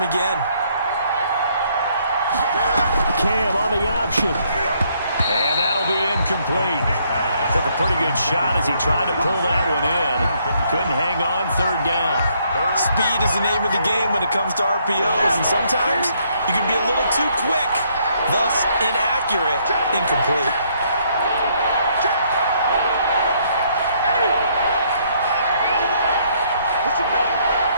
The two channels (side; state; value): both; inverted; correlation -0.69